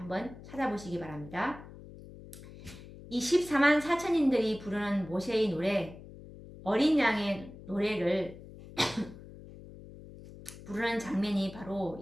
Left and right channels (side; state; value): left; noise; hum, 16 dB below the sound